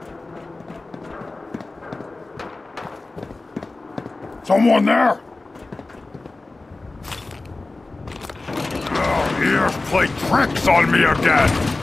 Someone there? Ears play tricks on me again.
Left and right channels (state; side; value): quieter; right; 3.2 dB